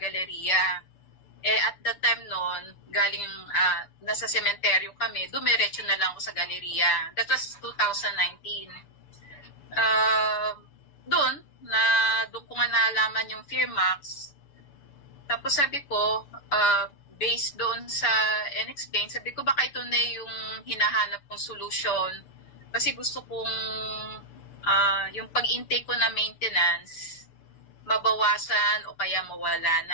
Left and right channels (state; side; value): late; right; 6.9 ms